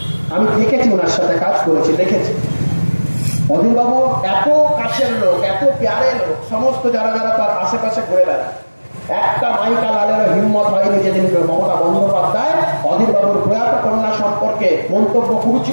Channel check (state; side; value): inverted; both; correlation -1.00